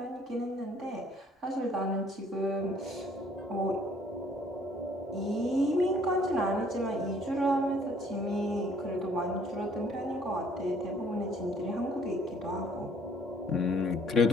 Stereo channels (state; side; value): normal; both; correlation 0.60